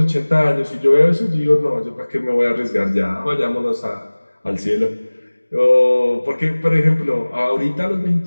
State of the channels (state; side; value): inverted; both; correlation -1.00